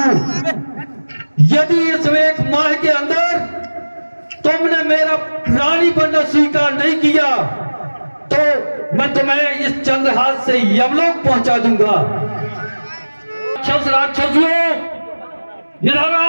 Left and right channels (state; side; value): inverted; both; correlation -1.00